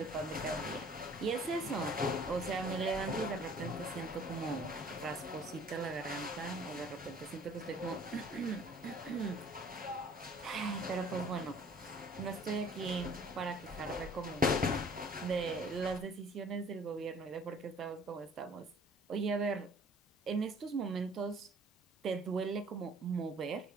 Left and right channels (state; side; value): normal; both; correlation 0.53